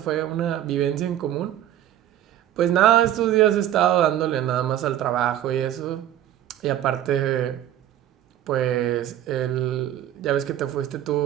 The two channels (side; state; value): left; quieter; 11.8 dB